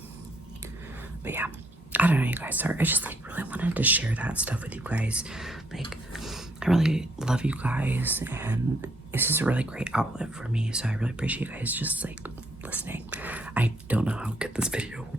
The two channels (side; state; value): both; normal; correlation 0.71